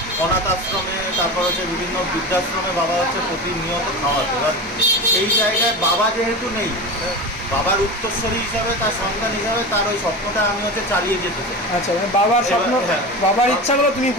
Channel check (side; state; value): both; normal; correlation 0.26